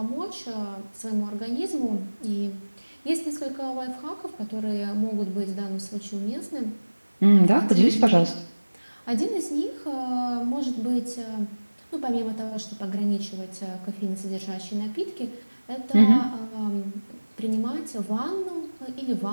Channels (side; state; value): both; inverted; correlation -1.00